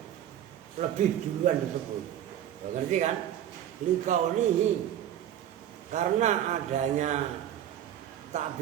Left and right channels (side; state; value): left; quieter; 11.1 dB